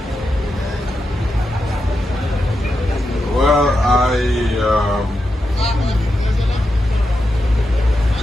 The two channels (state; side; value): normal; both; correlation 0.87